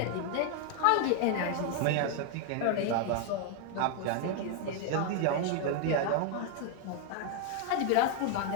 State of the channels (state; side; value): different; both; correlation 0.00